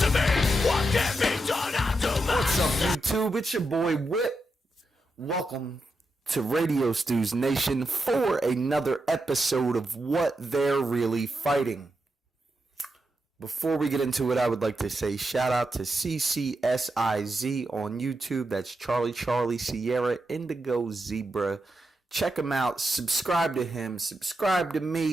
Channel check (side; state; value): both; normal; correlation 0.86